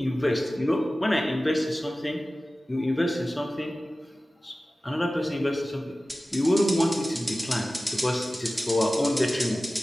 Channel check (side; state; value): both; normal; correlation 0.96